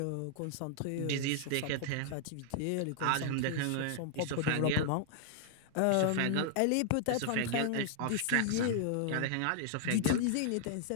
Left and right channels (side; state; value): both; different; correlation 0.00